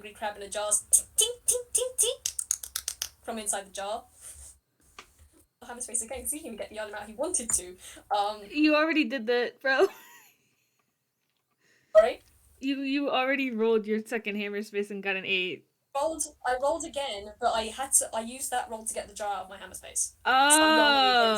crab in a jar, ting ting ting ting ting from inside the jar. Hammer space again because he didn't even get the item out he wanted to. You already did that, bro. Sorry. You already rolled your second hammer space and got an 8. I rolled again, but I used that roll to get the jar out of my hammer space. So I'm rolling again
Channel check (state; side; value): identical; both; correlation 1.00